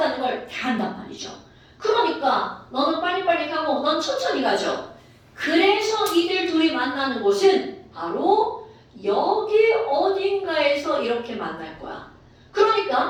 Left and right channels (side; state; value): both; identical; correlation 1.00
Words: 걸 다 한단 말이죠. 그러니까 너는 빨리빨리 가고 넌 천천히 가죠. 그래서 이들 둘이 만나는 곳은 바로 여기 어딘가에서 이렇게 만날 거야.